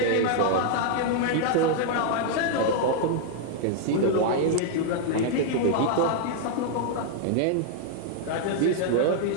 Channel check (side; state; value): both; different; correlation 0.00